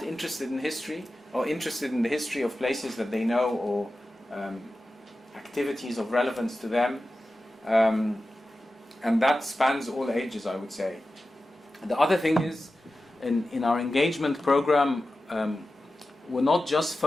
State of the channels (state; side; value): normal; both; correlation 0.94